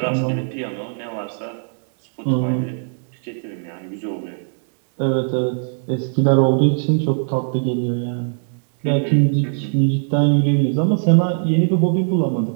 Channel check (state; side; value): silent; left; digital silence